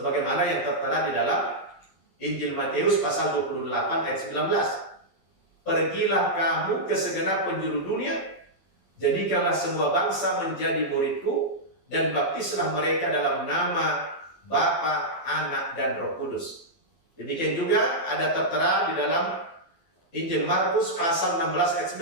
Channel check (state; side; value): late; right; 12 ms